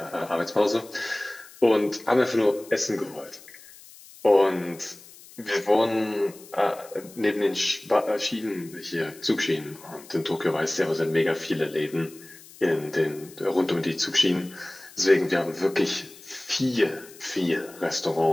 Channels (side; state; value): left; noise; hiss, 21 dB below the sound